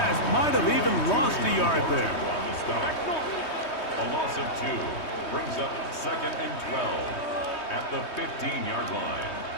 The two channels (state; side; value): late; right; 3.2 ms